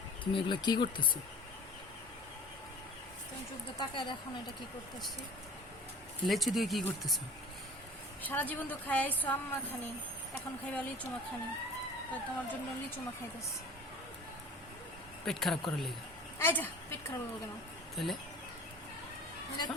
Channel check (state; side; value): normal; both; correlation 0.42